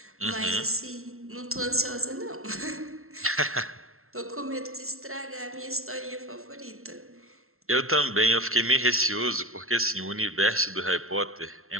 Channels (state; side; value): late; left; 0.62 ms